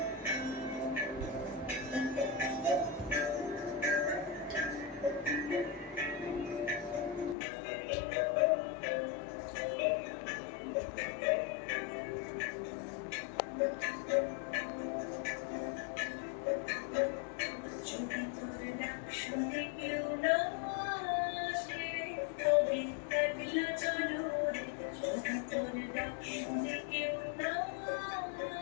তোর ডাক শুনে কেউ না আসে তবে একলা চলো রে। যদি তোর ডাক শুনে কেউ না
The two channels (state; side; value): drops out; right; at 7.4 s